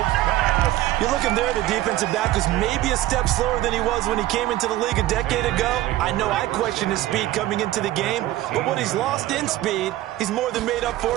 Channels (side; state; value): left; quieter; 15.3 dB